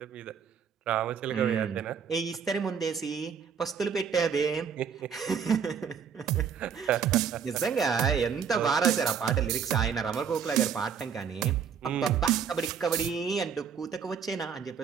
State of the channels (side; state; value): left; quieter; 7.1 dB